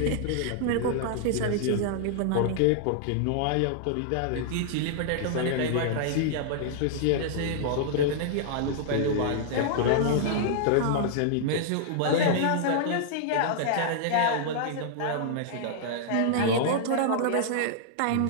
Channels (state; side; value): different; both; correlation -0.01